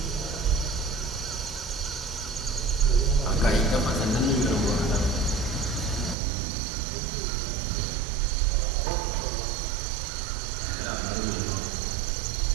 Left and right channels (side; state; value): left; drops out; at 6.2 s